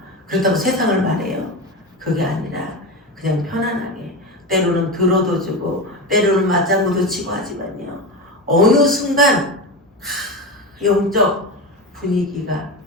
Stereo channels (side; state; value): both; normal; correlation 0.22